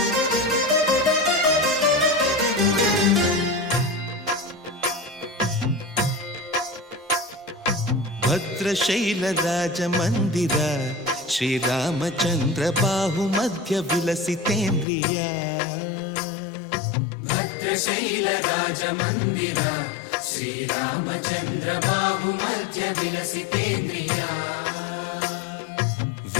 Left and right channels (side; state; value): right; drops out; at 14.9 s